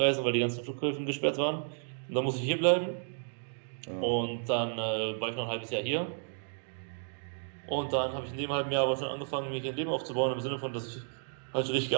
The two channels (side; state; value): left; silent; digital silence